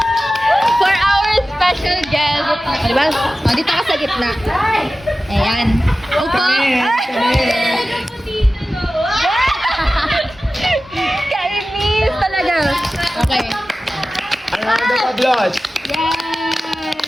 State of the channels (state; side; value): normal; both; correlation 0.95